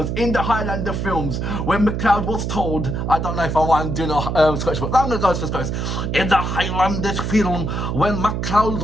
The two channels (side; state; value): right; noise; hum, 2 dB below the sound